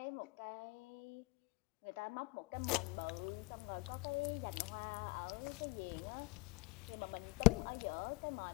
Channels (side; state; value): right; quieter; 26.9 dB